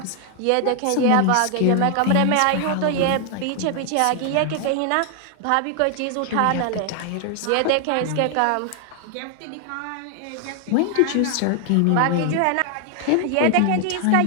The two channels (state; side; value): different; both; correlation 0.00